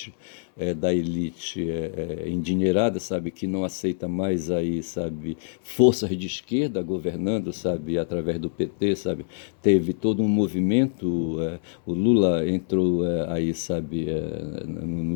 endinheirada, sabe, que não aceita mais aí, sabe, forças de esquerda governando, sabe, através do PT, sabe, teve todo um movimento, o Lula entrou aí, sabe,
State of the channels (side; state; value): right; silent; 61 dB below the other